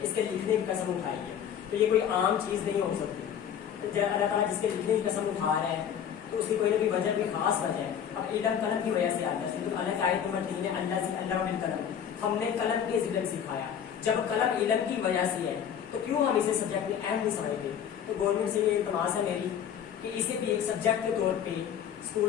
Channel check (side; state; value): right; quieter; 8.7 dB